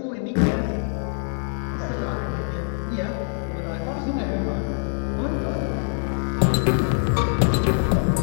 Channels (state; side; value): silent; right; 63 dB below the other